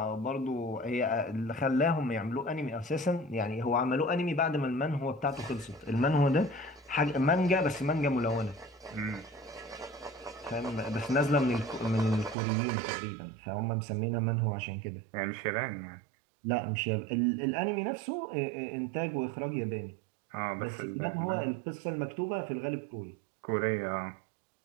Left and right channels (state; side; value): drops out; left; at 12.4 s